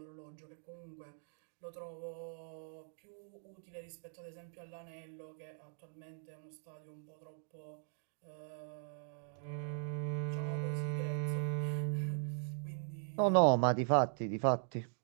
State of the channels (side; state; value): left; silent; digital silence